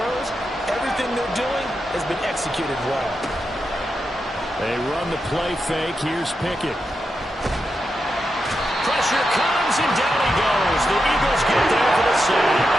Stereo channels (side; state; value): both; normal; correlation 0.87